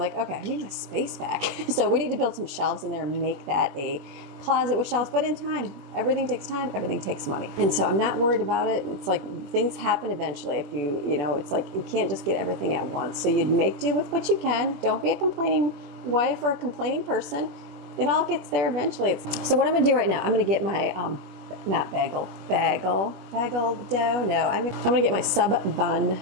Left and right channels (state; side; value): late; left; 21 ms